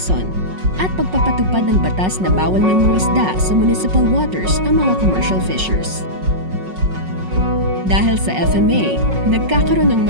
at pagpapatupad ng batas na bawal ng mga isda sa municipal waters ang mga commercial fishers. Dahil sa FMA, nagkakaroon ng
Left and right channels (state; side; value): late; left; 5.4 ms